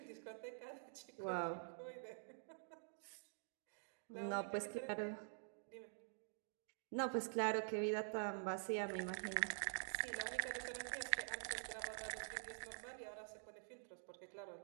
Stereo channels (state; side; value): silent; left; digital silence